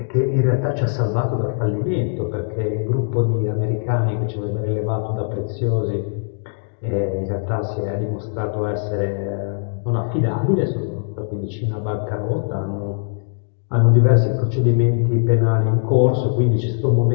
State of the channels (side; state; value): right; silent; digital silence